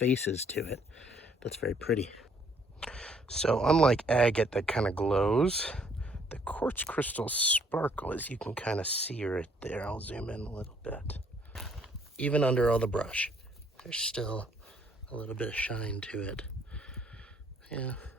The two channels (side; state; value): both; normal; correlation 0.65